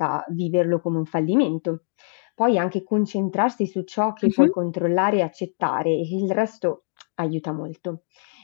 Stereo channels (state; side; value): silent; right; digital silence